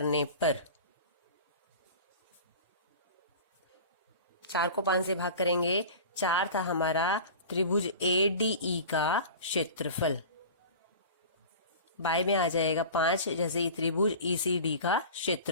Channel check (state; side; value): inverted; both; correlation -0.37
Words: पर, 4 को 5 से भाग करेंगे, 4 था हमारा त्रिभुज ADE का क्षेत्रफल, बाय में आ जाएगा 5, जैसे ही त्रिभुज ECD का